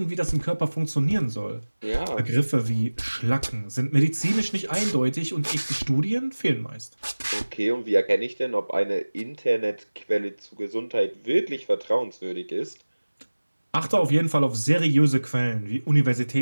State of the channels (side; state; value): both; inverted; correlation -1.00